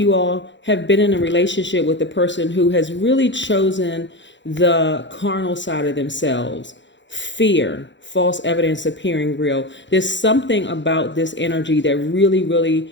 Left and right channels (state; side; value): late; right; 0.53 ms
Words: all have been in a relationship with a person who has really chosen the carnal side of themselves. Fear, false evidence appearing real. There's something about this energy that really,